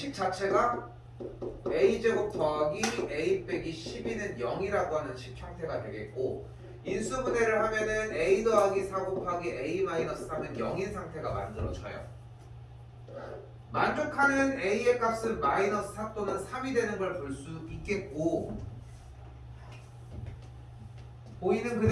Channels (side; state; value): both; identical; correlation 1.00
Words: 자체가 a제곱 더하기 a 빼기 12는 0이라고 하는 식 형태가 되겠고, 인수분해를 하면은 a 더하기 4 곱하기 a 마이너스 3은 0인 상태가 만들어져요. 만족하는 a의 값은 마이너스 4 또는 3이 되는 걸 볼 수 있겠고, 보이는